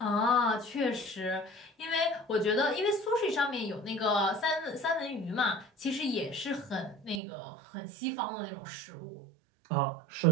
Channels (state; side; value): drops out; left; at 7.2 s